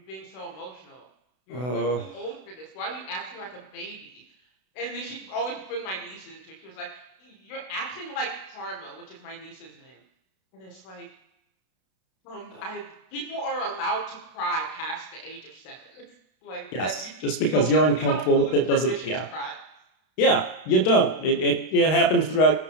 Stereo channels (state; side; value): late; right; 32 ms